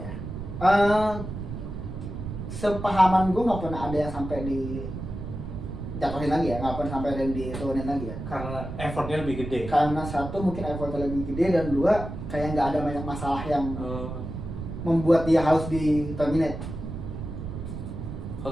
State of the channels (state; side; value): noise; right; rumble, 7 dB below the sound